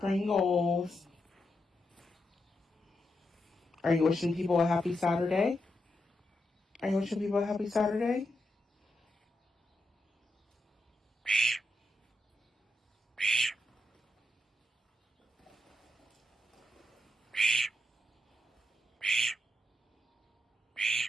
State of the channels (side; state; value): both; normal; correlation 0.84